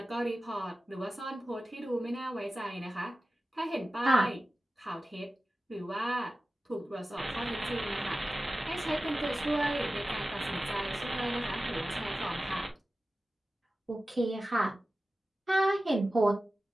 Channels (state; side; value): normal; both; correlation 0.95